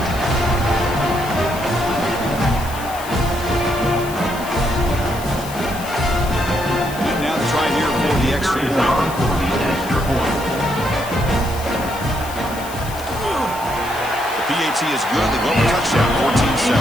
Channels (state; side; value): noise; left; hiss, 14 dB below the sound